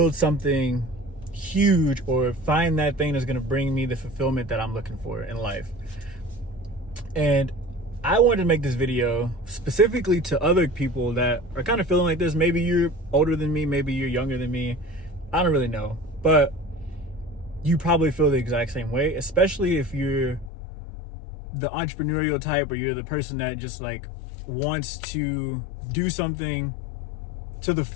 something huge, or find that thing that's going to bring me the fulfillment that I'm looking for in life. And I wanted to make this video specifically to other people that are kind of feeling like this. Maybe you're older than me, maybe you're younger than me, I don't really know, but you probably feel the exact same way, especially if you're the entrepreneurial type, or you're the person that just like wants to do something to the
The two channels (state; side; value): drops out; right; at 20.5 s